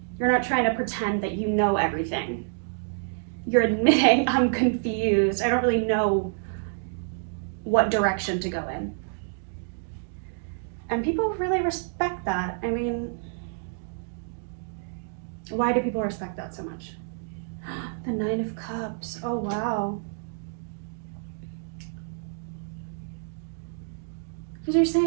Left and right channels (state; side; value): silent; left; digital silence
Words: You're not trying to pretend that you know everything. You're admitting, I'm confused. I don't really know what direction to go in. And people really respect that. I mean, why do people respect that so much? The Nine of Cups. Oh, wow. Because you're